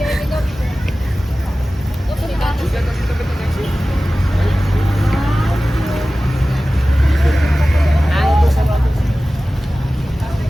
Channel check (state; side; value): normal; both; correlation 0.96